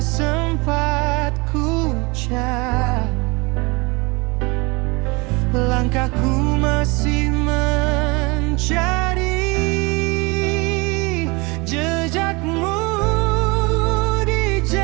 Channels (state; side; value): quieter; left; 26.6 dB